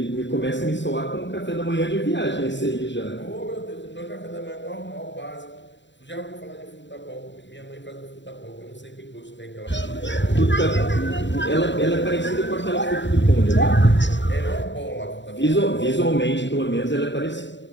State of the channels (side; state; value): right; late; 0.53 ms